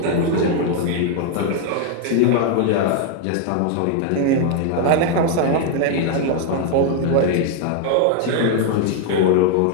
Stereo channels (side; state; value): both; different; correlation 0.01